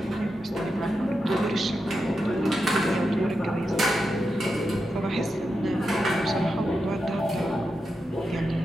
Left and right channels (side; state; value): both; normal; correlation 0.88